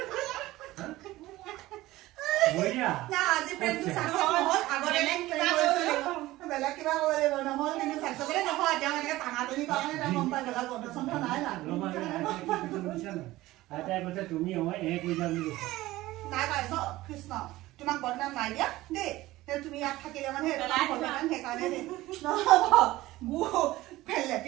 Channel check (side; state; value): left; quieter; 17.4 dB